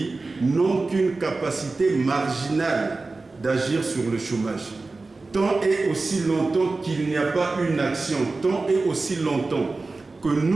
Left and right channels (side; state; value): left; quieter; 3.6 dB